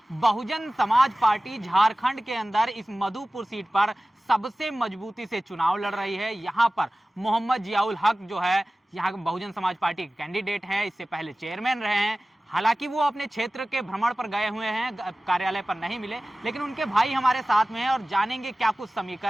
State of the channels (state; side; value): normal; both; correlation 0.97